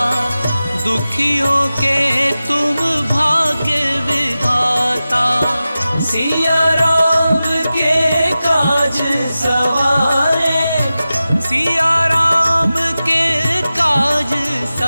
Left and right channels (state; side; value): inverted; both; correlation -0.95